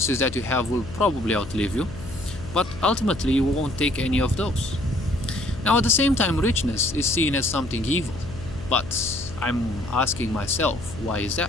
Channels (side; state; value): left; noise; hum, 13 dB below the sound